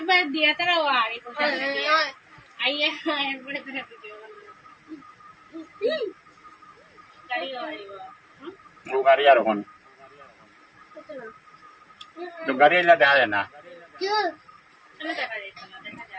দিয়া তারা আর আইয়া এরপরে তারা ভিডিও গাড়ি আর ওখানে গাড়ি এলা দেখা যায় না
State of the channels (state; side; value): identical; both; correlation 1.00